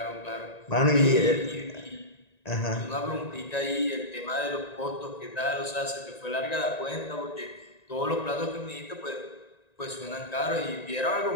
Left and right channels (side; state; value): right; late; 1.9 ms